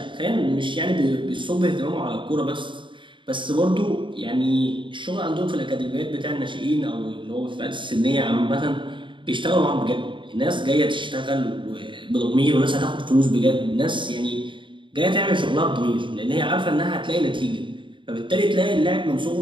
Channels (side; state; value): left; late; 0.24 ms